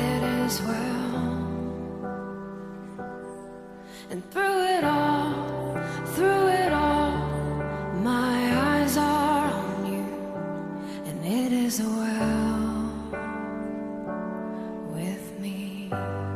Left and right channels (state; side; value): identical; both; correlation 1.00